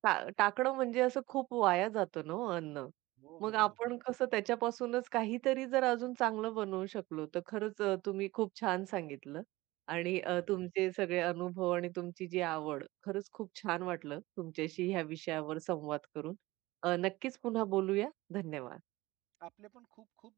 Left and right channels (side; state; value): left; quieter; 19.6 dB